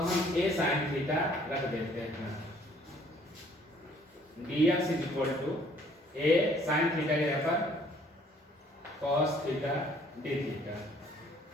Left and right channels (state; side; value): normal; both; correlation 0.59